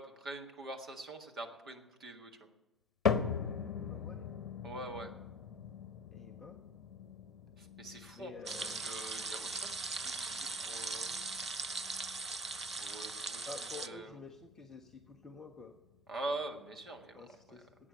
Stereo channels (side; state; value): both; normal; correlation 0.39